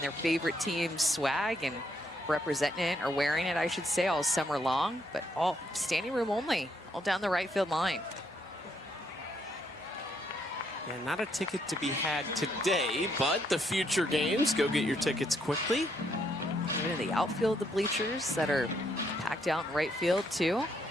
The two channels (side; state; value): both; normal; correlation 0.74